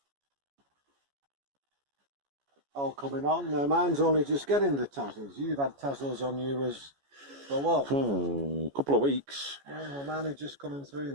All coming on. Now, mine's only just getting the tassels. You've had tassels on yours for what? Couple of weeks. Yeah, well, mine are just coming through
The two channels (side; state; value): left; late; 14 ms